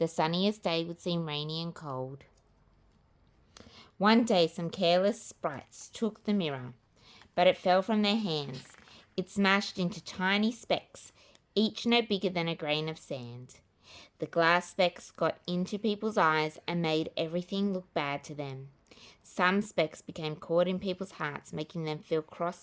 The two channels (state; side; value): identical; both; correlation 1.00